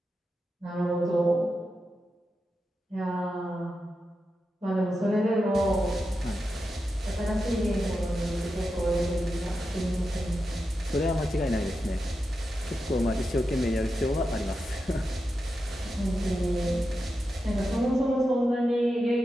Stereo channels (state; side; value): normal; both; correlation 0.89